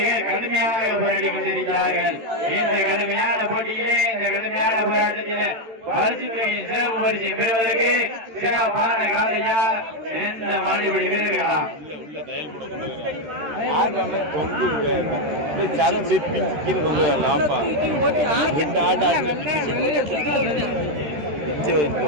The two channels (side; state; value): left; late; 13 ms